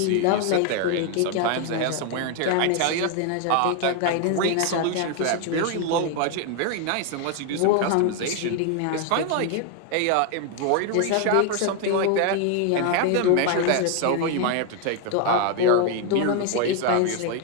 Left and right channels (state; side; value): different; both; correlation 0.01